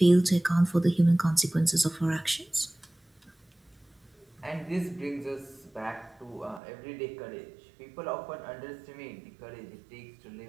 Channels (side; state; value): left; drops out; at 6.6 s